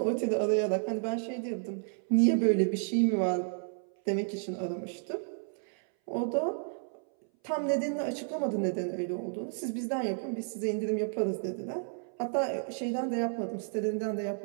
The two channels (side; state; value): left; silent; 57 dB below the other